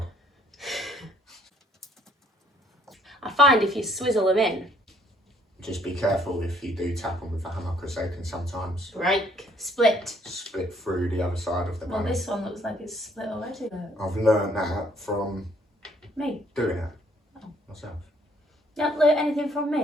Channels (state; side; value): normal; both; correlation 0.64